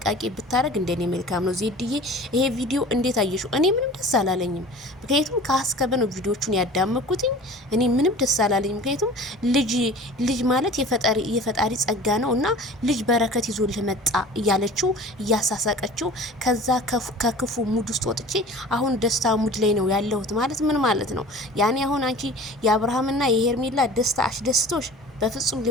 ብታረግ እንደኔ መልካም ነው። ዜድዬ ይሄ ቪዲዮ እንዴት አየሽው? እኔ ምንም ደስ አላለኝም። ምክንያቱም ከአስከበ ነው ቪዲዮቹን ያዳመኩትኝ። እኔ ምንም ደስ አላለኝም። ምክንያቱም ልጅ ማለት የፈጣሪ ጸጋ ነው እና ልጅ በረከት ይዞ ለመጣ እያለችው እያሳሳቀችው ከዛ ከክፉ ሙድ ውስጥ ወጥቼ አሁን ደስታ ሙድ ላይ ነው ያለሁት ማለት ምን ማለት ነው? ያኔ አሁን አንቺ የአብርሃምና የሄርሜላ ደስታ አሽደስቶሽ በፍጹም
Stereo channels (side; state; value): both; normal; correlation 0.42